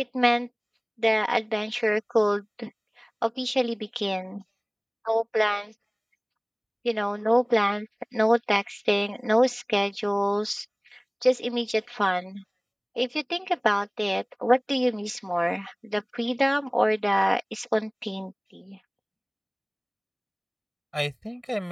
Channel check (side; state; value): both; identical; correlation 1.00